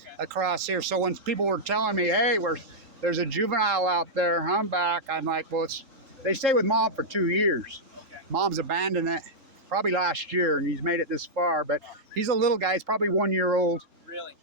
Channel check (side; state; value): left; late; 3.8 ms